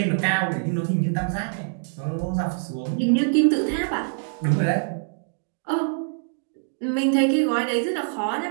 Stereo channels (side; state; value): left; silent; digital silence